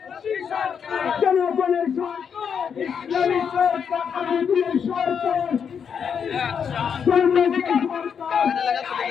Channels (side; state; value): right; quieter; 7.1 dB